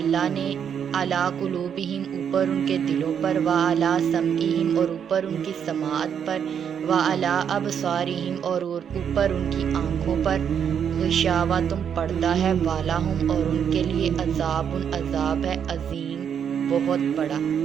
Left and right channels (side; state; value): left; quieter; 8.0 dB